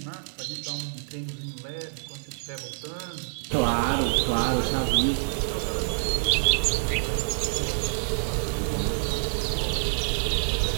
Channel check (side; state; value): left; silent; digital silence